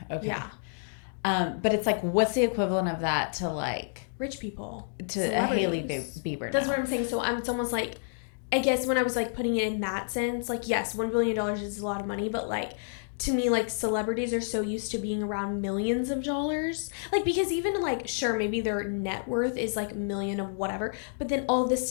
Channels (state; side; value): silent; right; digital silence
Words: okay, but it's like, what's the equivalent of that to like rich people, to a Hailey Bieber? That's what I'm saying. So it's almost like, I guess when I was like putting it in that sense, like yes, $1 billion is a lot of money, but like to me, like, celebrities are so used to being around millions of dollars. Like, because even, like, sure, maybe their net worth is, like, a million of whatever. But then all of this